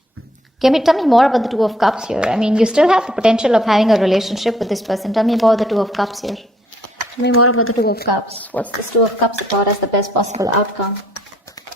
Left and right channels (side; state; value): both; normal; correlation 0.66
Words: Tell me more about the Two of Cups here. I mean, you still have the potential of having a relationship with this person. Tell me about the Two of Cups here. Tell me more about the Two of Cups. What's this Two of Cups about as the best possible outcome?